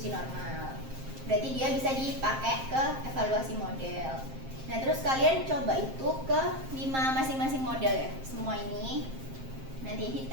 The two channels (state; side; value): late; left; 7.6 ms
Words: normal. Berarti dia bisa dipakai ke evaluasi model. Nah terus kalian coba itu ke 5 masing-masing model ya. Semua ini nanti